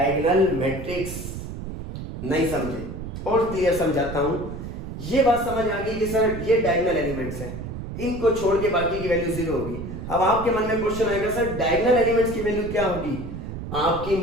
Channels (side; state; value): right; noise; rumble, 8 dB below the sound